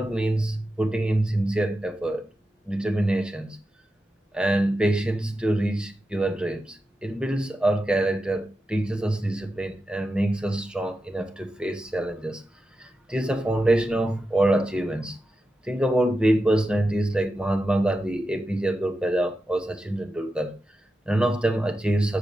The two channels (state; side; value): normal; both; correlation 0.90